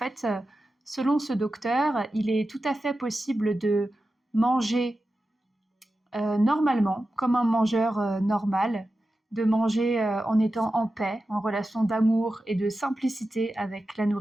selon ce docteur, il est tout à fait possible de manger normalement, comme un mangeur normal, de manger en étant en paix, en relation d'amour et de simplicité avec la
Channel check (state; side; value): normal; both; correlation 0.92